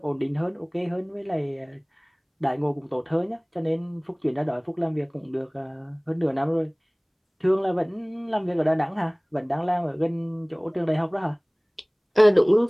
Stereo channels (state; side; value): identical; both; correlation 1.00